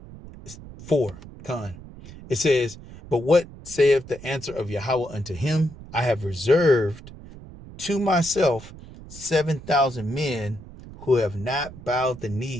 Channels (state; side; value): noise; right; rumble, 16 dB below the sound